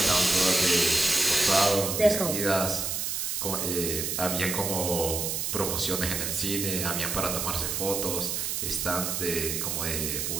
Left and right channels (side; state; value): right; noise; hiss, 1 dB below the sound